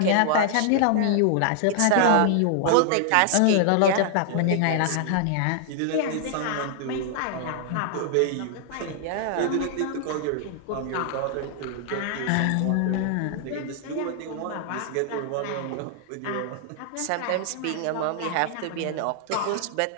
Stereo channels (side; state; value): both; different; correlation 0.00